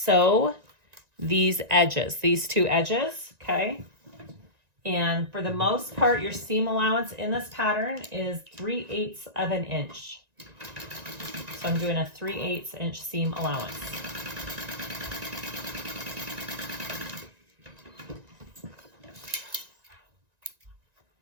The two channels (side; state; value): left; late; 1.9 ms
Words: these edges, these 2 edges, okay? And for the most part, your seam allowance in this pattern is 3/8 of an inch. So I'm doing a 3/8 inch seam allowance.